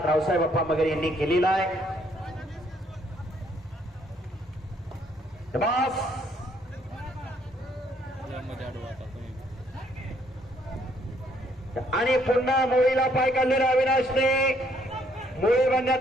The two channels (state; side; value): normal; both; correlation 0.67